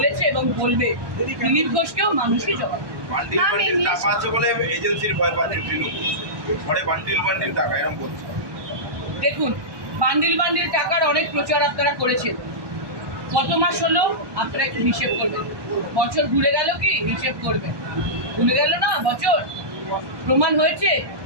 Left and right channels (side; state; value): left; late; 1.2 ms